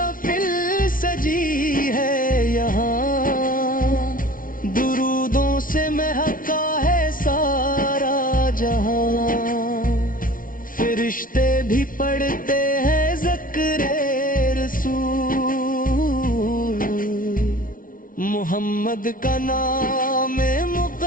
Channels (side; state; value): right; late; 0.40 ms